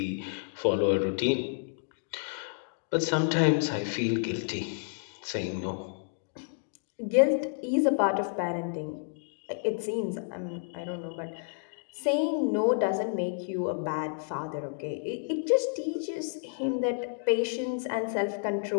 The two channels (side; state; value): right; silent; digital silence